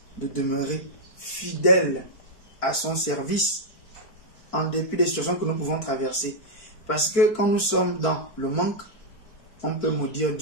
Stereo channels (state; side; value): late; right; 4.5 ms